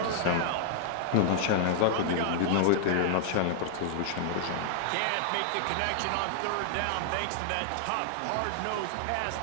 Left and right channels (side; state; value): both; different; correlation 0.00